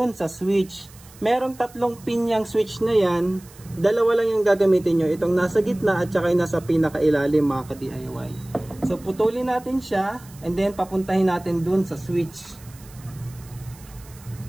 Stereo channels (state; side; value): noise; right; hiss, 23 dB below the sound